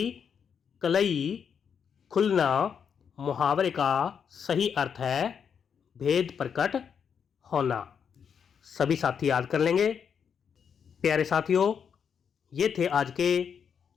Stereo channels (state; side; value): quieter; right; 7.2 dB